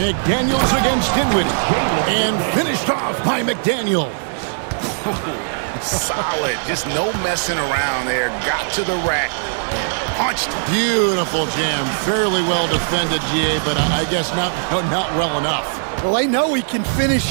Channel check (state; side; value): silent; left; 63 dB below the other